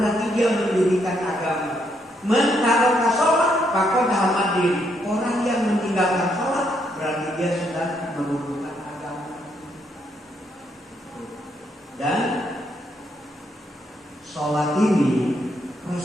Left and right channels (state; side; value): normal; both; correlation 0.75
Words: dia mendirikan agama. Man taraka sholat faqad hamadin. Orang yang meninggalkan sholat berarti dia sedang menurunkan agama. Dan sholat ini